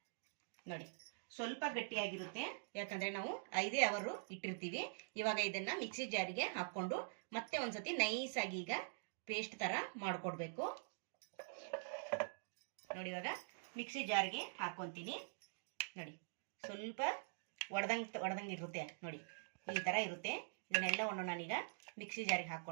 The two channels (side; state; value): left; silent; digital silence